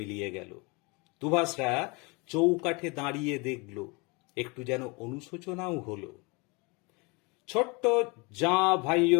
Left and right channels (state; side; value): quieter; right; 28.4 dB